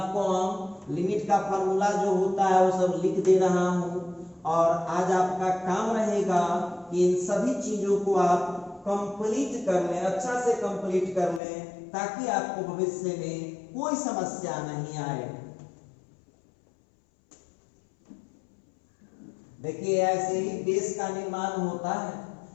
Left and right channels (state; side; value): drops out; right; at 11.4 s